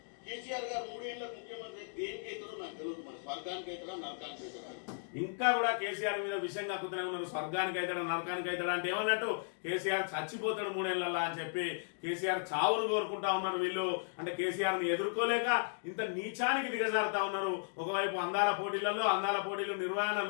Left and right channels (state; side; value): silent; right; digital silence